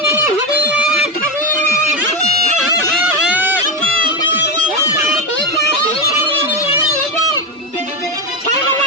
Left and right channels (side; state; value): both; normal; correlation 0.13